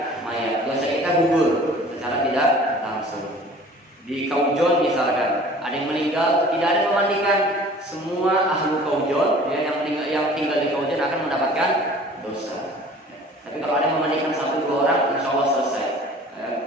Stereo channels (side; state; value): both; normal; correlation 0.47